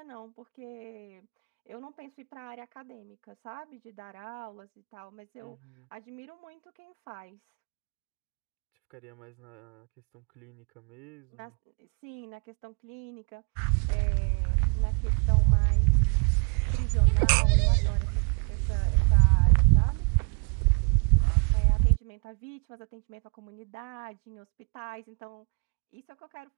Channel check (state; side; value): quieter; left; 38.0 dB